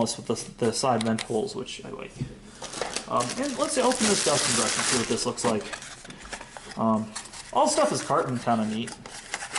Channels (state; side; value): identical; both; correlation 1.00